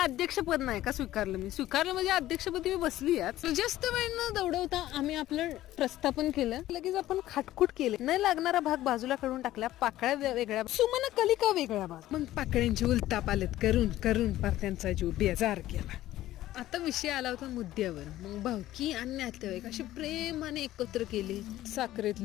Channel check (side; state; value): right; quieter; 14.6 dB